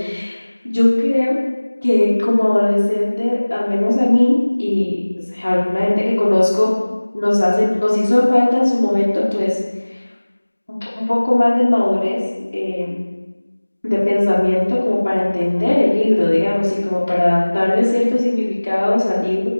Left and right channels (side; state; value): both; inverted; correlation -1.00